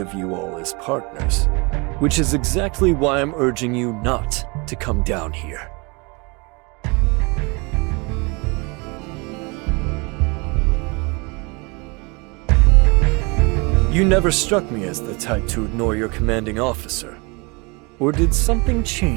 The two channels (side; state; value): left; quieter; 29.0 dB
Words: you all as partners, which is exactly why I'm urging you not to come down here. You never struck me as the type to ignore your commanding officer. Or did something